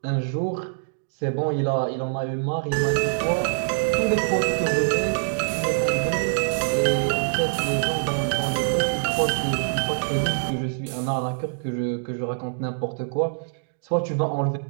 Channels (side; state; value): left; silent; digital silence